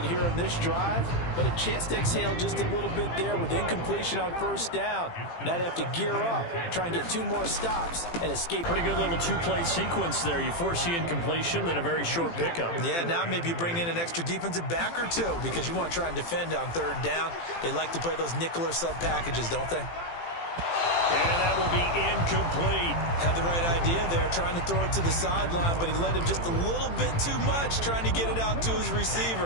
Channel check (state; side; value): late; right; 18 ms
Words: here in this drive, but a chance to exhale just a little bit there with incompletion on 1st down. Now they have to gear up, try and get 2 more stops, and escape. Pretty good little 2-play sequence there. You force the incompletion, then a very short pickup. Yeah, now maybe you bring in an extra defensive back or 2 because you want to try and defend on 3rd down. They like to play those nickel or sub packages, don't they? And that will be incomplete. Had the right idea there, trying to throw it to the sideline, but he led him just a little bit too much, trying to get it out to his